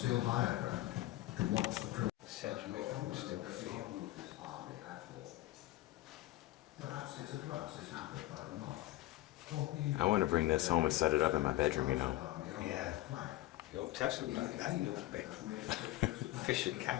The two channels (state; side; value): quieter; right; 16.6 dB